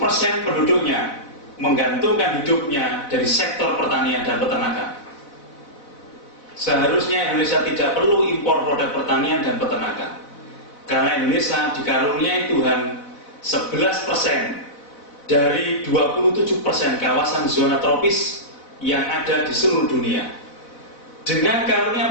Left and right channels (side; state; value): right; late; 4.0 ms